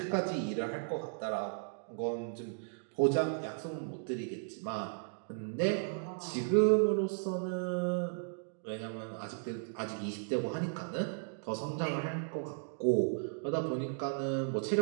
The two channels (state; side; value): silent; left; digital silence